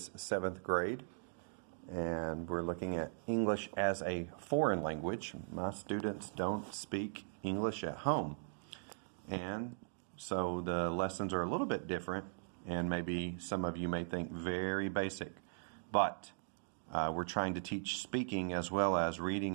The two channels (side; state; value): left; silent; digital silence